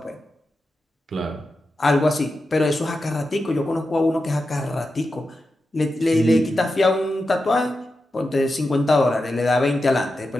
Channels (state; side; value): normal; both; correlation 0.90